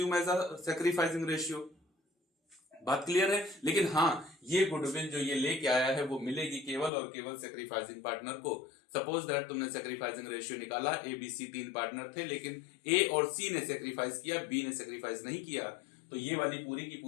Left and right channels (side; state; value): right; drops out; at 6.9 s